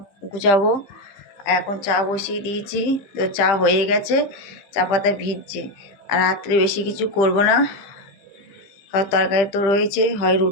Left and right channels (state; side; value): late; right; 15 ms